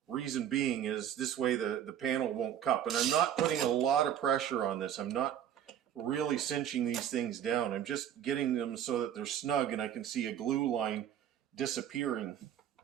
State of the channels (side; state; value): left; quieter; 10.1 dB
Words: Reason being is this way the panel won't cup. And I'm not putting a lot of pressure on this. I'm not really cinching these things down. I'm just getting them so that they're snug and I can see a glue line disappearing.